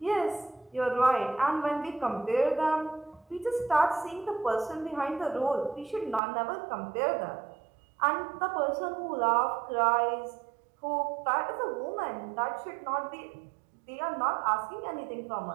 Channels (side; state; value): left; drops out; at 6.2 s